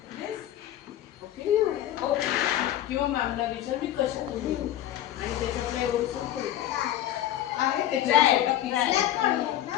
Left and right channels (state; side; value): quieter; right; 12.4 dB